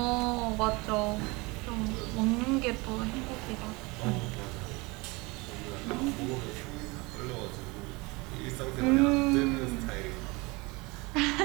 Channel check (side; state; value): left; quieter; 25.4 dB